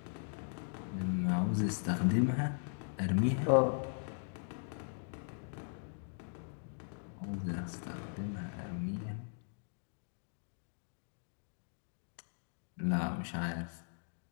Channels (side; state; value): right; silent; digital silence